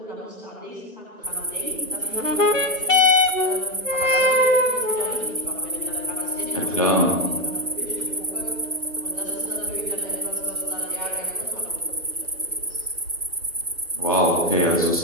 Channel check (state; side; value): normal; both; correlation 0.09